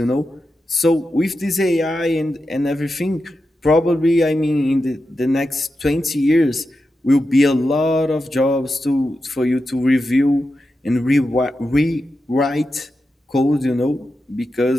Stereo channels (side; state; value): both; normal; correlation 0.89